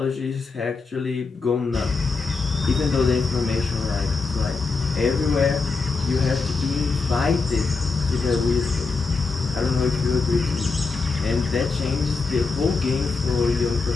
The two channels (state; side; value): quieter; right; 4.3 dB